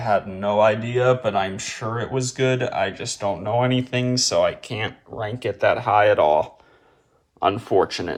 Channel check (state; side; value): identical; both; correlation 1.00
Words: no idea, but I'm sure it was good. I just don't know anything, so I can't rank it that high at all,